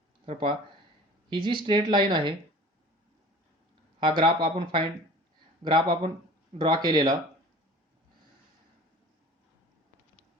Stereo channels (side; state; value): both; normal; correlation 0.43